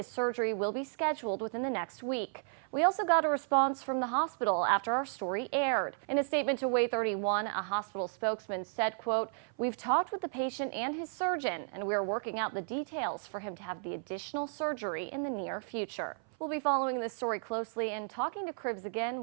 surgery will be scheduled within the next week. We also got a response from the hospital after our story aired. In a statement to Way 31, a hospital spokesman said, quote, "We've talked with the patient and his surgeon, and we are working out the details for him to have the additional surgery in the near future." We'll be following this story closely and talking to Cribbs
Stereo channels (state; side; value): silent; left; 55 dB below the other